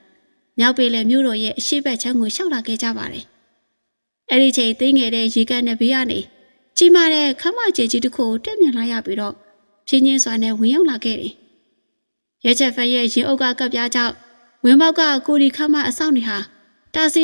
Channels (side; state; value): both; inverted; correlation -1.00